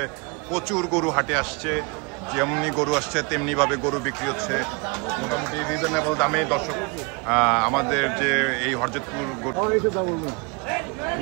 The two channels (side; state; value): left; quieter; 29.9 dB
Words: প্রচুর গরু হাটে আসছে, যেমনি গরু আসছে তেমনি ভাবে গরু বিক্রি হচ্ছে, মোটামুটি রিজনেবল দামে। দর্শক, আমাদের যে এই হরজতপুর গরু